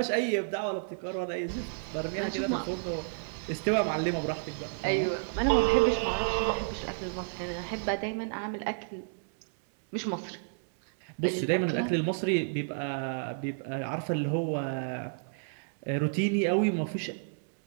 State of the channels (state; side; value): silent; left; 57 dB below the other